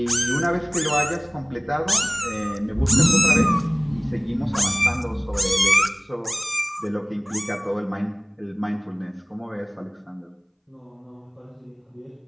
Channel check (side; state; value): both; identical; correlation 1.00